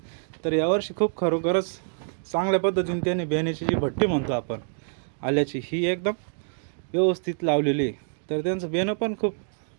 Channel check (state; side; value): silent; left; digital silence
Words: तर यावर्षी खूप खरोखरच चांगल्या पद्धतीने त्यांनी बियाण्याची जी भट्टी म्हणतो आपण आल्याची ही एकदम व्यवस्थित लावलेली आहे. तर त्यांचं बियाणं पण खूप